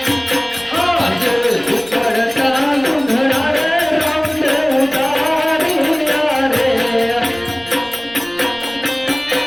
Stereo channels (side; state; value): right; noise; rumble, 25 dB below the sound